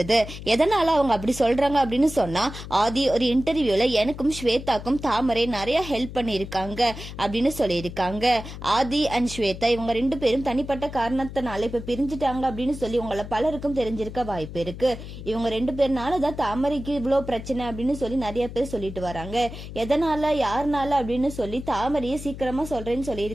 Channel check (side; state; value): left; noise; hum, 11 dB below the sound